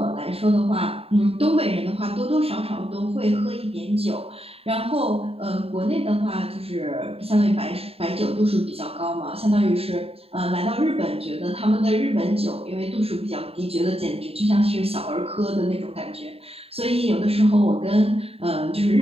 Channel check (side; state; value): left; late; 0.28 ms